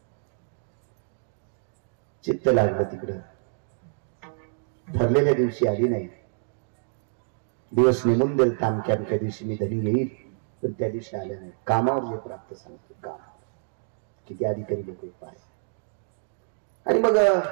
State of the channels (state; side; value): silent; left; digital silence